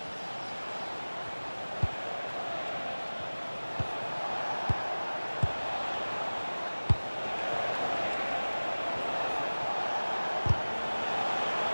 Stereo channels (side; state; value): both; inverted; correlation -1.00